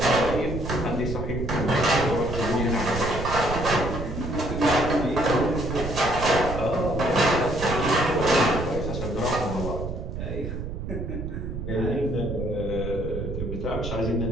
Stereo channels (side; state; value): right; noise; rumble, 6 dB below the sound